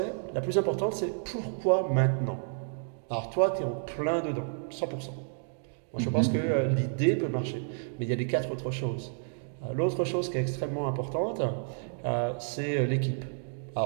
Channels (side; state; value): left; silent; digital silence